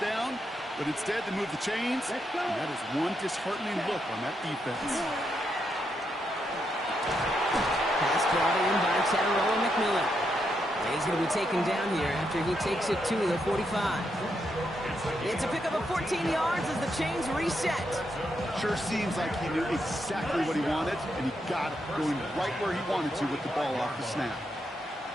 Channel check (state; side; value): normal; both; correlation 0.81